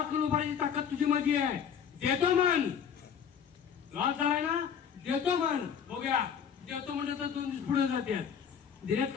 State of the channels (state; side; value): quieter; right; 7.7 dB